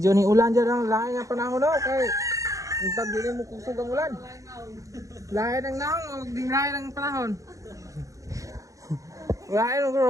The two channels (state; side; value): late; left; 0.16 ms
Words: ni ulan dyan ang lahat nga panahon no. Kay untag din mo kusog ang ulan. Lahat ng naong o di lahat ng panahon. Lahat ng